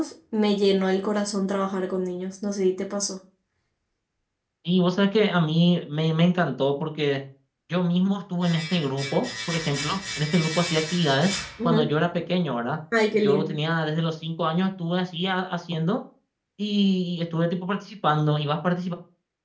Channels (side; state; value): both; identical; correlation 1.00